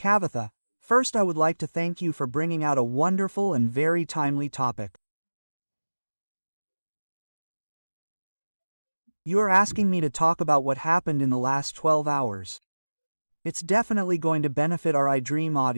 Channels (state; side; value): inverted; both; correlation -1.00